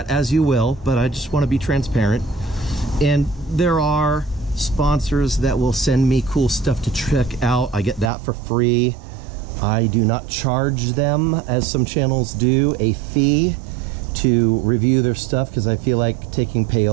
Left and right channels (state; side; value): drops out; left; at 8.1 s